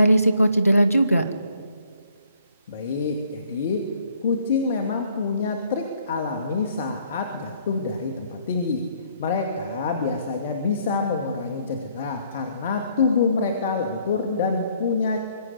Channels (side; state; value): both; inverted; correlation -0.66